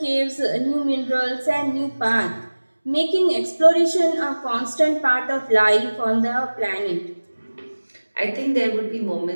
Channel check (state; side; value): inverted; both; correlation -1.00